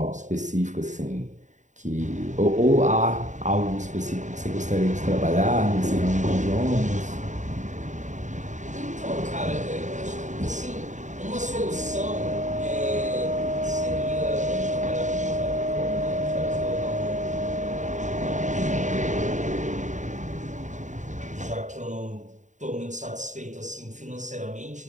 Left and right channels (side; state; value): left; late; 0.36 ms